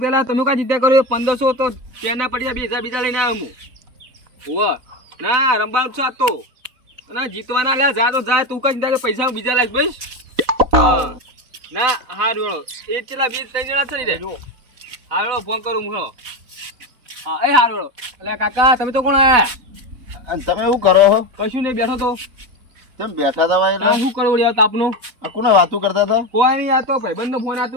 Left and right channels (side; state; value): left; late; 4.0 ms